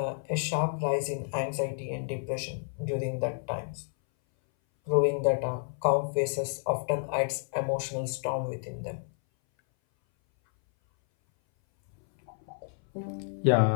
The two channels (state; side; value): silent; right; 58 dB below the other